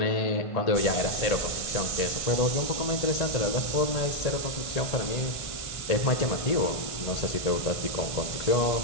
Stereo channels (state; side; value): late; right; 1.5 ms